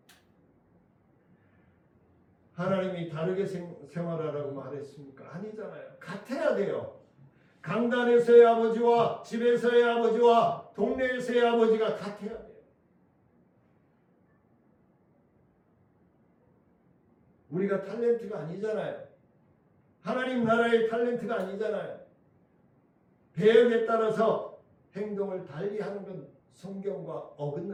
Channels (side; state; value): both; identical; correlation 1.00